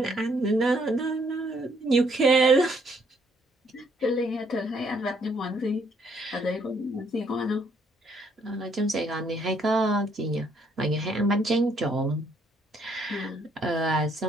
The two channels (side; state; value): both; normal; correlation 0.68